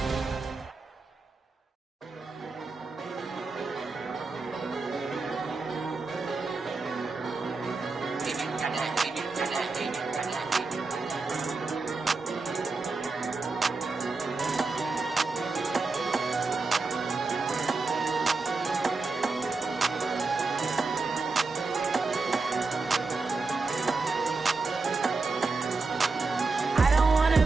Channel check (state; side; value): quieter; left; 4.0 dB